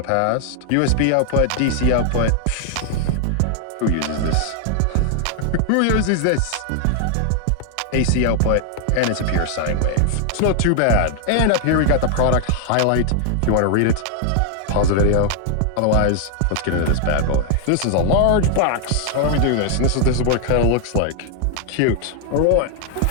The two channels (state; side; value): different; both; correlation 0.00